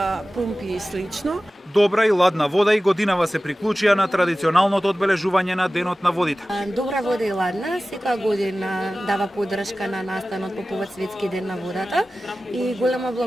пумпи и слично. Добра и ладна вода и годинава се приклучија на традиционалното одбележување на Денот на водите. Добра вода и ладна, секоја година дава поддршка на настанот по повод Светски ден на водата и голема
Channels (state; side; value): normal; both; correlation 0.96